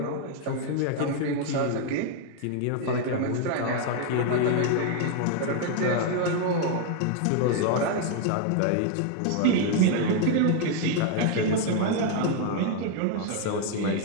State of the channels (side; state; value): both; different; correlation 0.00